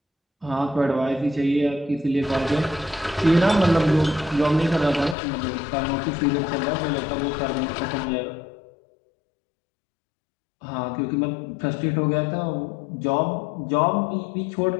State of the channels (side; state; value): right; drops out; at 5.2 s